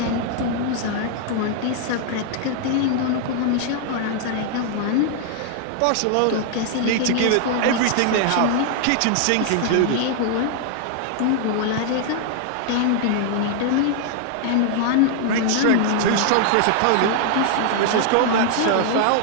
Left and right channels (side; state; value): both; different; correlation 0.00